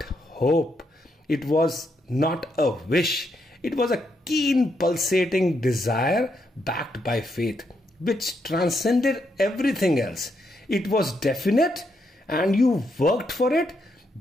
hope. It was not a wish. It was a keen pulsating desire backed by faith, which transcended everything else. It was definite and you worked for it,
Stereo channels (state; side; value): normal; both; correlation 0.79